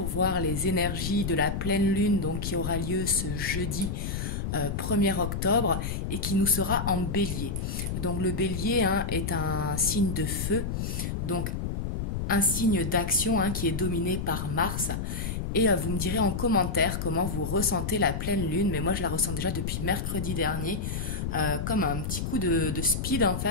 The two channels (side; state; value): left; noise; rumble, 3 dB below the sound